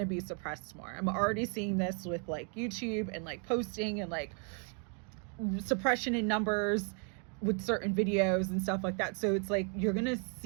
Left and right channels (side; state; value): left; quieter; 40.0 dB